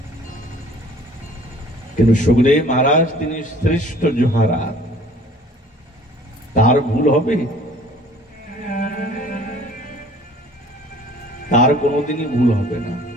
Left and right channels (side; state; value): both; normal; correlation 0.51